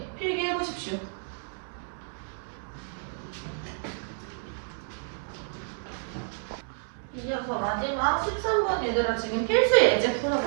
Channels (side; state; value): left; silent; digital silence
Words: 필기해 보십시오. 이어서 마지막 13번 얘들아 지금 필수 예제